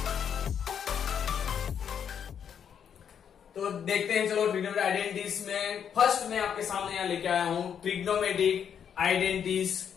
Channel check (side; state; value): right; quieter; 8.1 dB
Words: तो देखते हैं, चलो ट्रिग्नोमेट्रिक आइडेंटिटीज में फर्स्ट मैं आपके सामने यहाँ लेके आया हूं ट्रिग्नोमेट्रिक आइडेंटिटीज